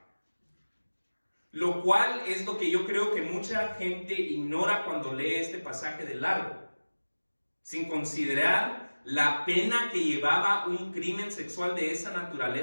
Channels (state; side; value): inverted; both; correlation -1.00